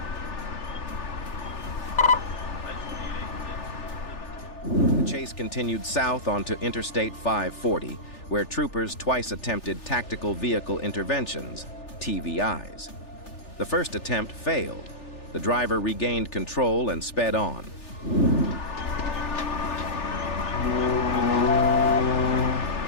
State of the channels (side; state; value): right; late; 3.4 ms